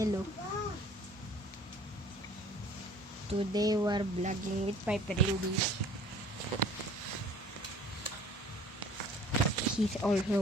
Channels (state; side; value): normal; both; correlation 0.50